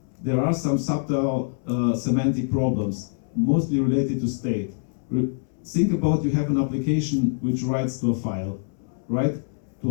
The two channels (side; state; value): right; silent; 62 dB below the other